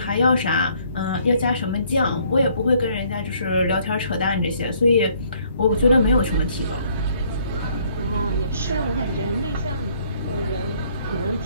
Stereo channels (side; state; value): both; inverted; correlation -0.64